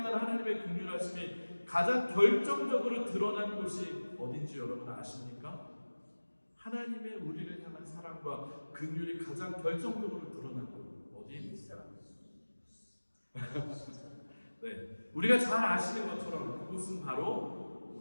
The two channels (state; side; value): inverted; both; correlation -1.00